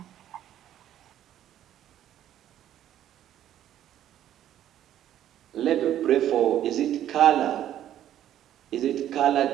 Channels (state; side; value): quieter; left; 11.6 dB